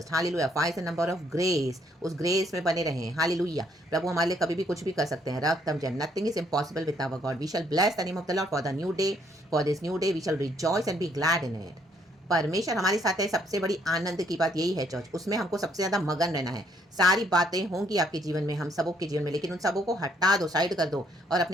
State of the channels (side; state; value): both; normal; correlation 0.68